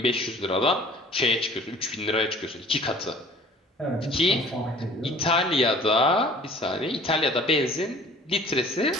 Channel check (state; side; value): normal; both; correlation 0.49